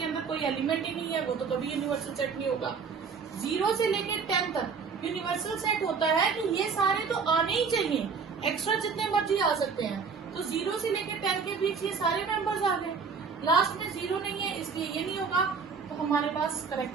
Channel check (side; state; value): left; quieter; 5.5 dB